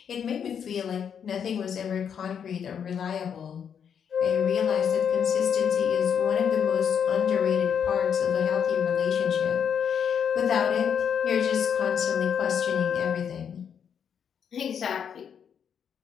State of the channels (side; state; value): right; quieter; 7.8 dB